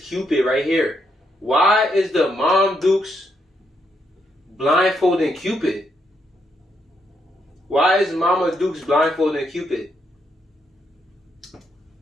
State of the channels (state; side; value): normal; both; correlation 0.78